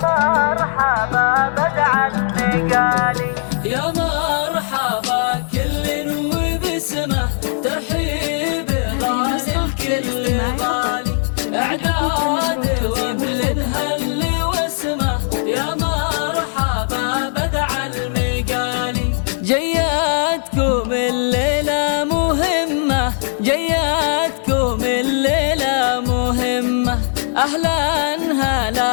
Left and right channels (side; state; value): right; silent; 59 dB below the other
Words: مرحبا بدع النقالي يا مرحبا كل وبسمه ترحيب غالي الكل غالي اعداد وغل الهل واسمه يا مرحبا بدع المقالي. جياتكم الليلة مهمة جياتكم الليلة مهمة أهلا